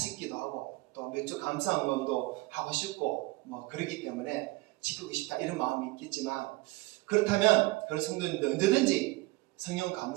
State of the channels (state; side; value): quieter; left; 22.0 dB